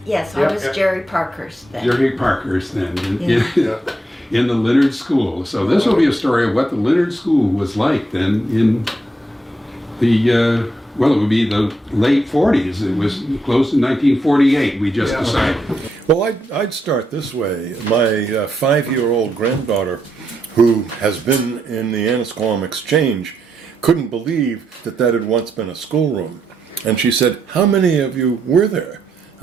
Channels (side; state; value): both; normal; correlation 0.79